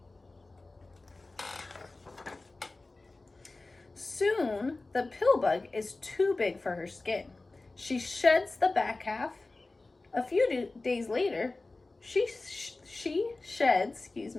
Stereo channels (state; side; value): quieter; right; 3.2 dB